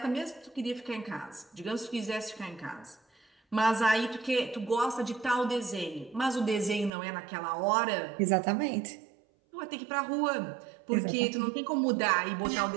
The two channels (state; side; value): drops out; left; at 6.9 s